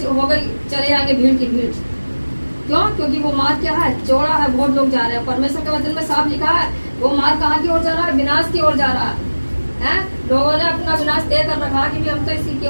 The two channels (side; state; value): both; inverted; correlation -1.00